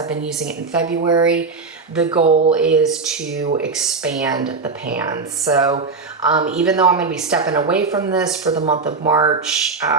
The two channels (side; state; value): left; quieter; 4.4 dB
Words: been using it in February, the goal is to expand the pan. So even though I'm going to be stepping away from this for the month of March,